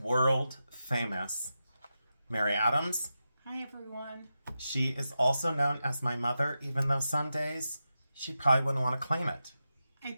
famous Mary Adams. Hi, everyone. She is also known as my mother, even though some days she probably wouldn't want to claim it. I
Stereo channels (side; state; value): both; inverted; correlation -0.90